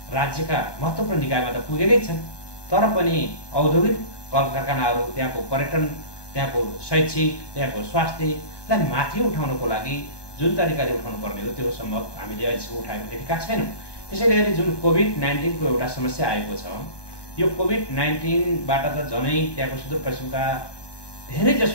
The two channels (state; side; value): late; right; 1.2 ms